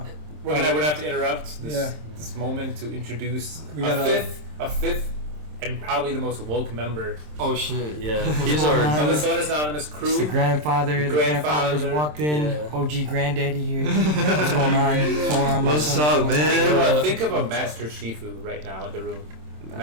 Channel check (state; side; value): late; left; 27 ms